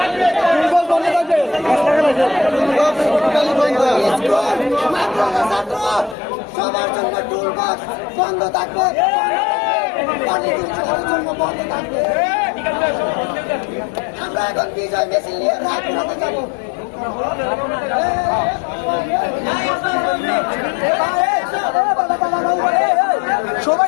সবার জন্য টুল বক্স বন্ধ থাকবে, জন্য বন্ধ থাকবে। আমরা এখন বিজয় মিছিল নিয়ে রাজপথে যাবো।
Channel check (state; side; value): drops out; right; at 6.2 s